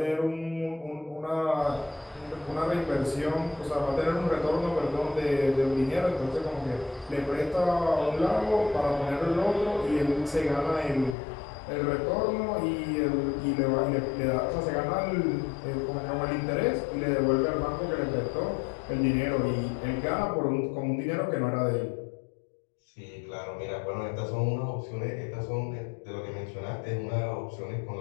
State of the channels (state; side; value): drops out; right; at 11.2 s